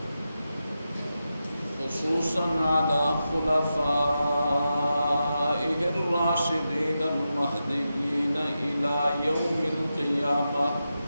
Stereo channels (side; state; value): both; inverted; correlation -0.90